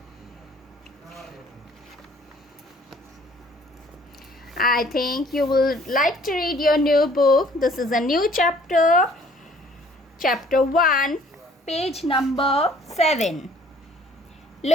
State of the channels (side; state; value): both; normal; correlation 0.56